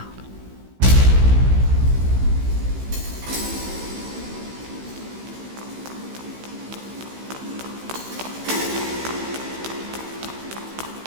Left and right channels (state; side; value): late; left; 16 ms